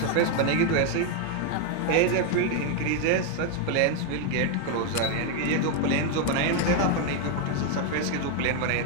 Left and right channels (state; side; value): different; both; correlation 0.01